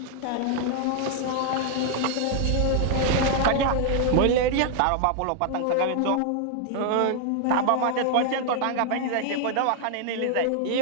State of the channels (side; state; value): both; different; correlation 0.00